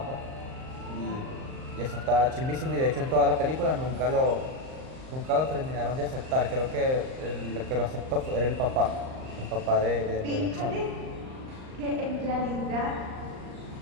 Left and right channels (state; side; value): late; left; 38 ms